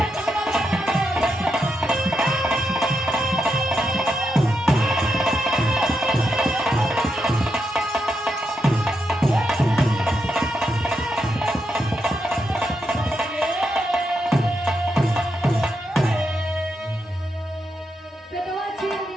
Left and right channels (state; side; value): normal; both; correlation 0.83